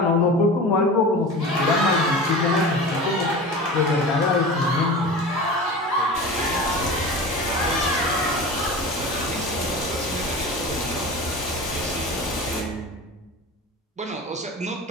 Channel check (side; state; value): both; normal; correlation 0.33